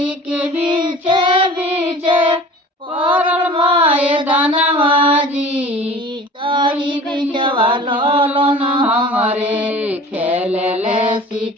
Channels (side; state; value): both; normal; correlation 0.43